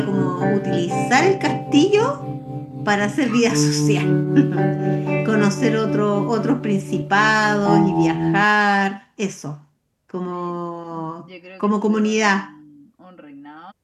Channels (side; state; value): both; identical; correlation 1.00